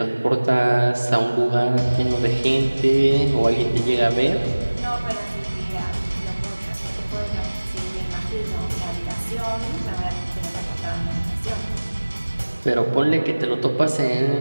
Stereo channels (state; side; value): inverted; both; correlation -1.00